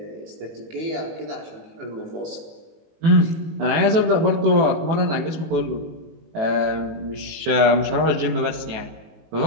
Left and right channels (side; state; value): left; late; 18 ms